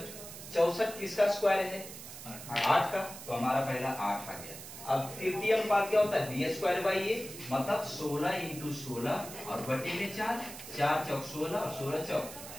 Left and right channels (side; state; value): right; noise; hiss, 12 dB below the sound